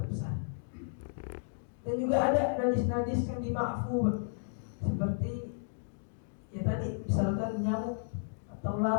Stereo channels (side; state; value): right; silent; digital silence